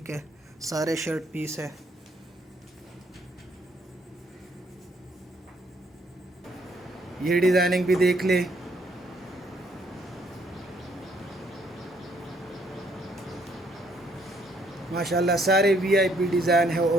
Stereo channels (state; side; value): normal; both; correlation 0.68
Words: है, सारे शर्ट पीस है। ये डिज़ाइनिंग भी देख ले। माशाल्लाह सारे वीआईपी डिज़ाइन है